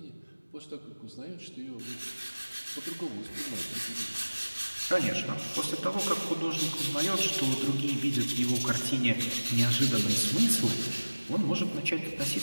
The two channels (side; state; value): both; inverted; correlation -1.00